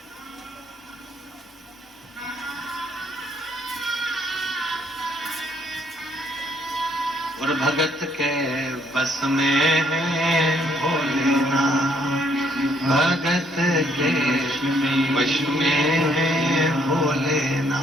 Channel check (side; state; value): both; normal; correlation 0.67